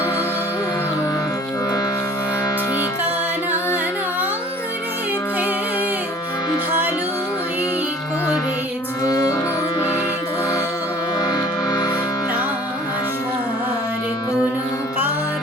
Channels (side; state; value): both; normal; correlation 0.50